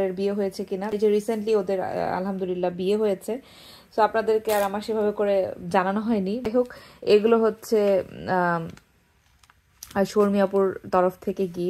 বিয়ে হয়েছে কিনা। এই যে রিসেন্টলি ওদের আলহামদুলিল্লাহ বিয়ে হয়েছে। সো আপনাদেরকে আর আমার সেভাবে করে জানানো হয়নি। যাই হোক, এগুলো হচ্ছে আর শর্মি আপুর তরফ থেকে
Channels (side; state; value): both; identical; correlation 1.00